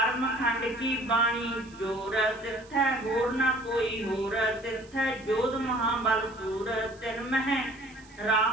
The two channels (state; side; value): noise; right; hiss, 26 dB below the sound